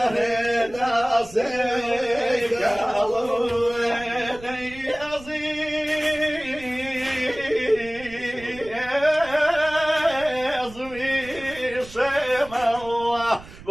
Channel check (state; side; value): noise; right; rumble, 18 dB below the sound